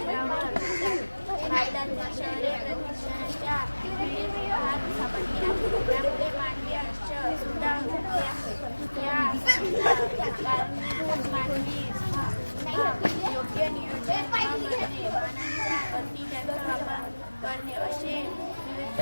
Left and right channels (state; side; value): inverted; both; correlation -1.00